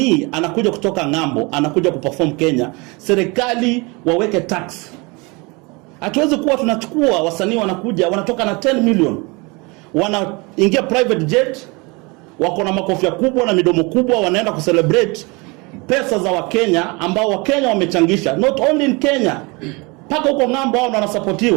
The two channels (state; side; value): quieter; left; 27.2 dB